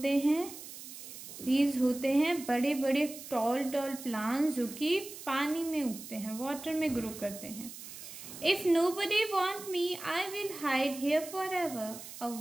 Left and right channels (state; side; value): noise; right; hiss, 13 dB below the sound